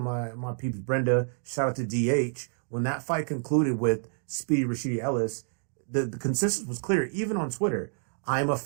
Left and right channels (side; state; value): left; silent; digital silence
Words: peeps Brenda, shout out to DH. When that fight concluded with Speedy Rashidi Ellis, the consensus was clear, even on Twitter. I'm a